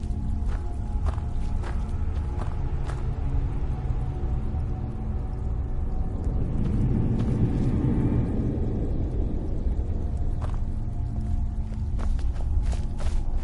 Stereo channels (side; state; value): both; identical; correlation 1.00